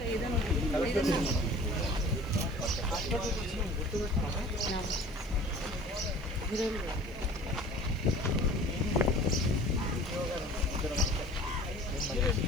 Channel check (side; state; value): left; noise; hiss, 30 dB below the sound